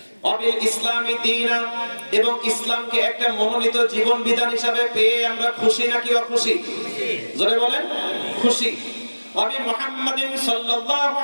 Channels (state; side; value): inverted; both; correlation -1.00